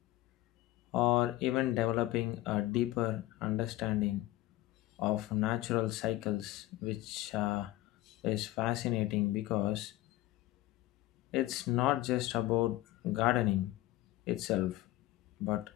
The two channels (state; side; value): quieter; right; 16.9 dB